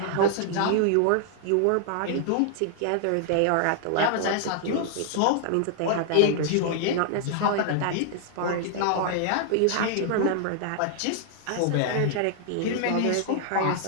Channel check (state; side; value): different; both; correlation 0.00